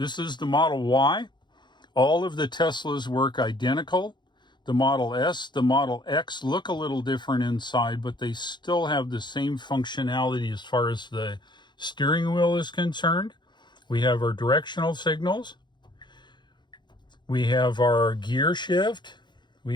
is the Model Y. All of the Teslas work identical. The Model S, the Model X look a little different inside, but they still have the same functionality as far as the steering wheel is concerned. We have our directional signals. We have our gear shift.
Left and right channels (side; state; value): right; late; 0.22 ms